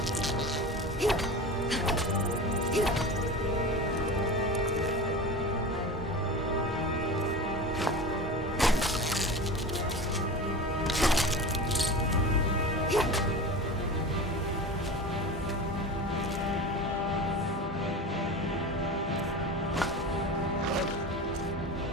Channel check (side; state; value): both; normal; correlation 0.30